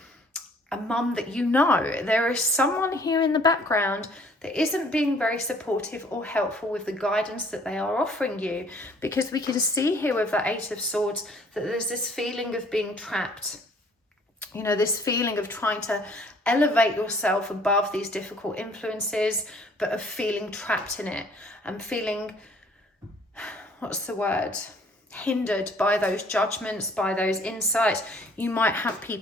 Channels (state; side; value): normal; both; correlation 0.58